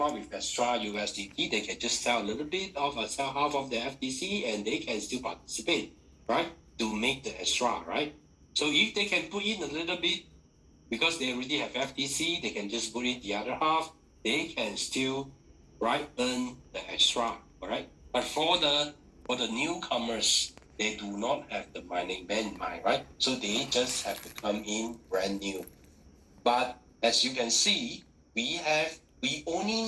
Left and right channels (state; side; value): identical; both; correlation 1.00